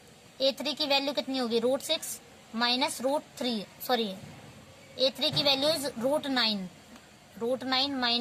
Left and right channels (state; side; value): identical; both; correlation 1.00